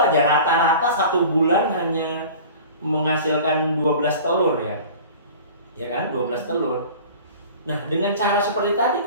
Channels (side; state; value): both; inverted; correlation -0.40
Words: aja rata-rata 1 bulan hanya menghasilkan 12 telur ya kan, 12 telur. Nah dengan cara seperti tadi